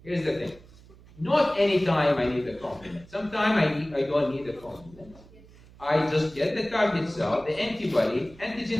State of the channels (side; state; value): right; noise; hum, 23 dB below the sound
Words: Here's the thing. Not any time I need the complement. Sometimes I don't need the complement. I just get the target cell, the antibody. Antigen